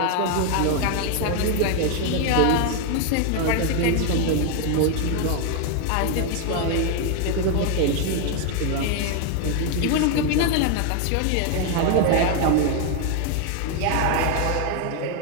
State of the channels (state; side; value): different; both; correlation 0.01